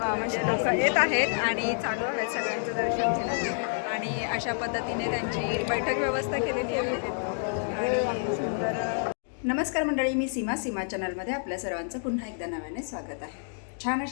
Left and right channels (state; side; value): silent; right; digital silence